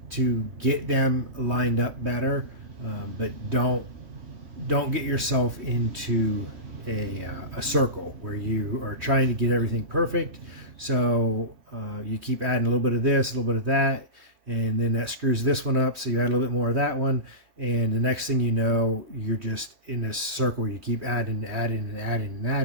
to get them lined up better, but don't get yourself into a circle where you are trying to get everything perfect. So you keep adding a little bit of this, a little bit of that, and then that screws this one up, so you add a little bit more of that one, and the next thing you know, you're just in this circle where you keep adding and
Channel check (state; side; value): late; left; 3.2 ms